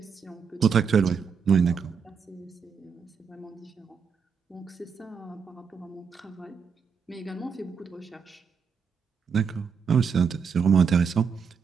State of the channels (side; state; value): left; quieter; 6.2 dB